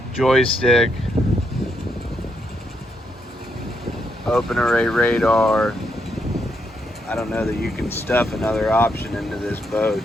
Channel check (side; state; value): both; normal; correlation 0.79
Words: joystick, open array radar. I don't know that you can stuff another option into this boat.